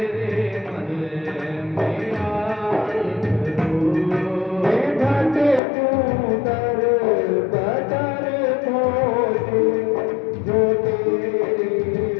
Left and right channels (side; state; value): right; drops out; at 5.6 s